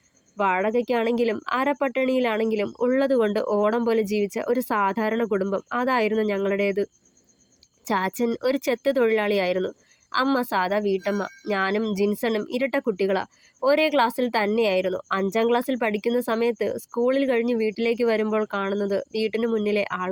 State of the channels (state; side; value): identical; both; correlation 1.00